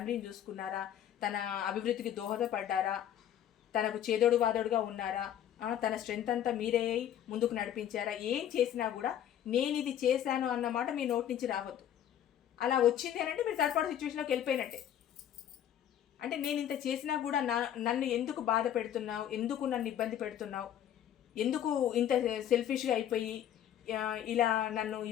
చూసుకున్నారా, తన అభివృద్ధికి దోహదపడ్డారా, తనకు చేదోడు వాదోడుగా ఉన్నారా, తన స్ట్రెంత్ అంతా మీరే ముందుకు నడిపించారా, ఏం చేసినా కూడా నేను ఇది చేశాను అన్నమాట మీ నోటి నుంచి రావద్దు. అలా వచ్చింది అని అంటే మీరు థర్డ్ పార్టీ సిచ్యువేషన్లోకి వెళ్ళిపోయినట్టే. అంటే నేను ఇంత చేసినా కూడా నన్ను ఎందుకు బాధ పెడుతున్నావు, ఎందుకు నన్ను ఇబ్బంది పెడుతున్నావు, ఎందుకు ఇంత సెల్ఫిష్గా అయిపోయి ఇలా నన్ను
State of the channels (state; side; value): quieter; right; 10.4 dB